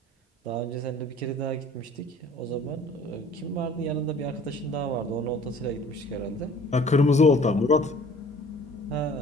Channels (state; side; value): normal; both; correlation 0.51